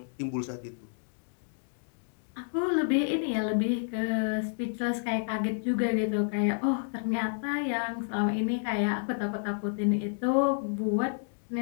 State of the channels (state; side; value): silent; right; digital silence